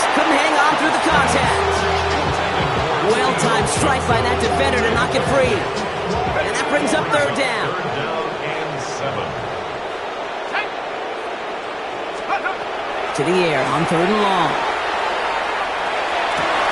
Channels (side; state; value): both; identical; correlation 1.00